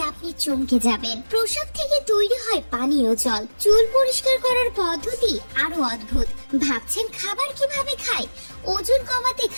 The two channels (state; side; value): inverted; both; correlation -1.00